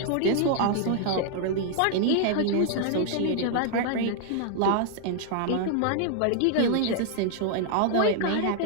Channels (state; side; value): different; both; correlation 0.00